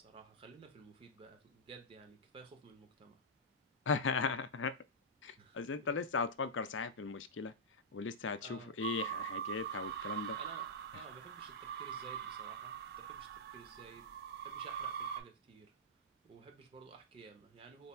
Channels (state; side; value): normal; both; correlation -0.11